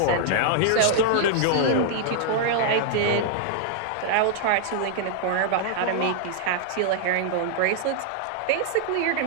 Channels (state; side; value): different; both; correlation -0.01